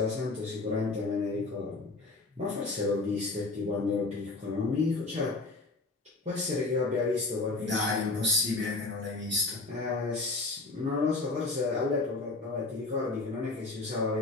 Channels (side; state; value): right; quieter; 3.4 dB